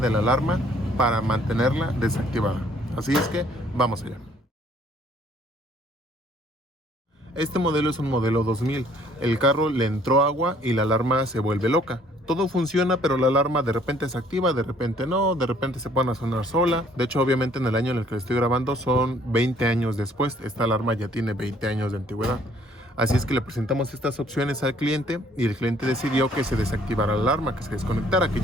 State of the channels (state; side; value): normal; both; correlation 0.61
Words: la alarma para mantenerla desactivada. Así es que vamos allá. Este modelo es un modelo 2000. El carro le entró agua y la alarma se vuelve loca. Todo funciona, pero la alarma de repente se activa, de repente no, de repente se pone a sonar sola. De hecho, obviamente en el año en el que estoy grabando son 20 años después. Esta alarma ya tiene 20 años de antigüedad. Así es que le presentamos estas opciones al cliente y el cliente decidió que se desactivara la alarma, que se desconectara, que